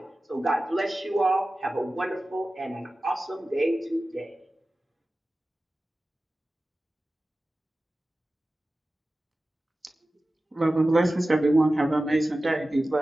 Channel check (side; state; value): both; normal; correlation 0.95